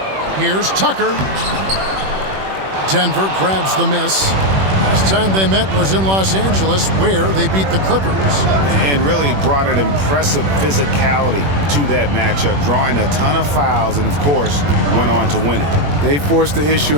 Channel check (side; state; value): left; late; 21 ms